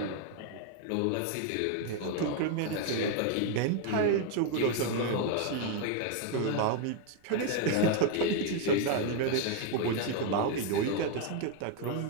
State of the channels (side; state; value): both; different; correlation 0.01